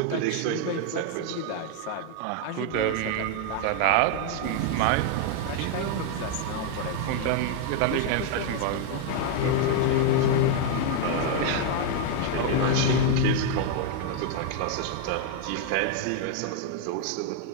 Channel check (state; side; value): different; both; correlation 0.00